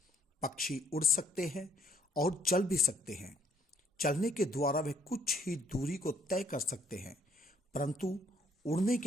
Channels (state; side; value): normal; both; correlation 0.66